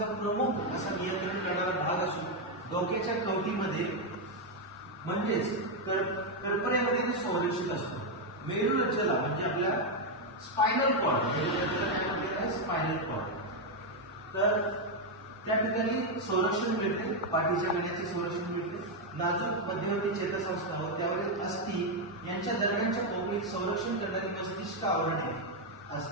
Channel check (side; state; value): both; normal; correlation 0.02